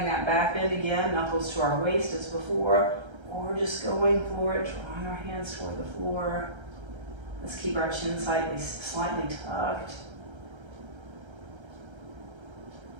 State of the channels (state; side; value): late; left; 1.3 ms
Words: that back bend again, knuckles to our waist as before, or just going for it, drawing our hands toward the floor. Let's keep our chin slightly tucked.